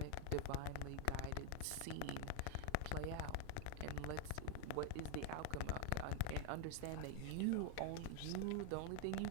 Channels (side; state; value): both; different; correlation 0.01